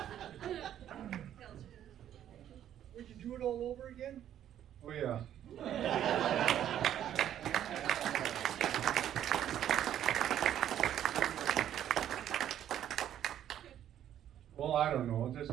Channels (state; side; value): quieter; left; 10.8 dB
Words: Would you do it all over again? Oh, yeah. Well, I don't know,